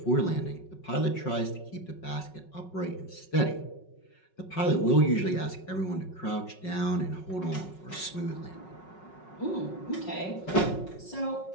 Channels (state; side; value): late; right; 5.4 ms